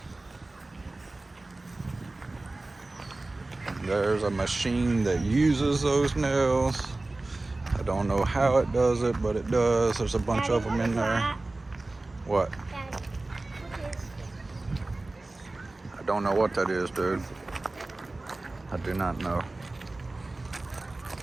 There's a machine that uses those nails. I don't know how it does it, but it does. There's a bunch Daddy, of them what in is there. that? What? Daddy, what is I don't know what that is, dude. I do not know.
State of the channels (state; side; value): quieter; left; 3.0 dB